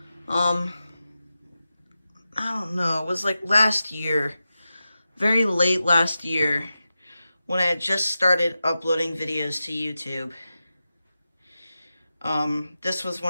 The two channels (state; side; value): inverted; both; correlation -0.92